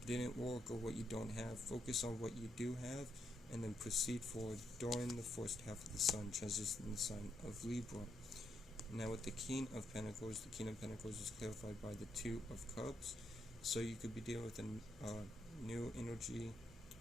didn't work or what you don't have, focus on what you do have, and then proceed forward during the first half of the sun transition in the sign of Libra. Now with the King of Pentacles is clarified by the Two of Cups. So you could be dealing with a new energy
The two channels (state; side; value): normal; both; correlation 0.79